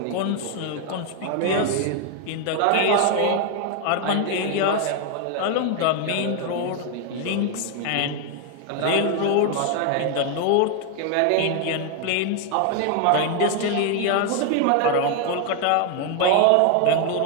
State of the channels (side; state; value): both; different; correlation 0.01